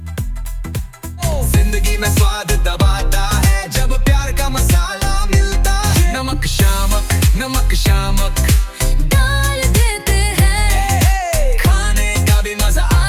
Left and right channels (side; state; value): both; identical; correlation 1.00